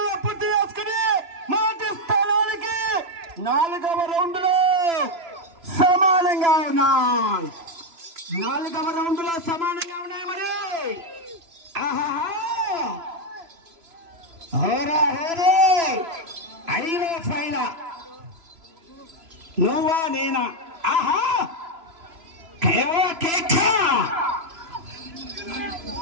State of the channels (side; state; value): left; late; 3.0 ms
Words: పూర్తి చేసుకుని మొదటి స్థానానికి 4వ రౌండ్ లో సమానంగా ఉన్నాయి. 4వ రౌండ్ లో సమానంగా ఉన్నాయి. మరి అడిలో ఫైన నువ్వా నేనా?